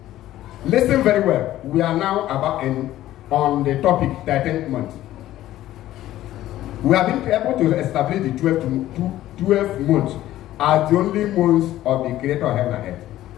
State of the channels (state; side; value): quieter; right; 14.1 dB